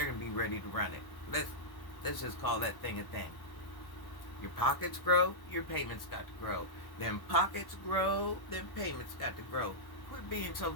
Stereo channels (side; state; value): right; late; 1.1 ms